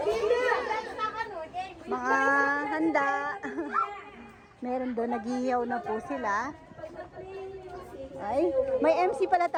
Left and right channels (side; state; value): both; identical; correlation 1.00